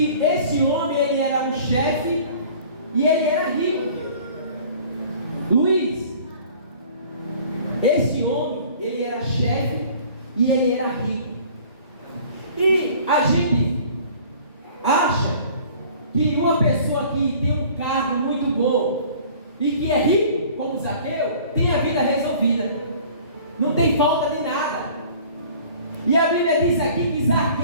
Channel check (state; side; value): inverted; both; correlation -0.49